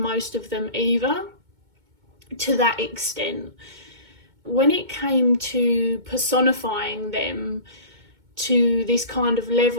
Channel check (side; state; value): left; late; 2.2 ms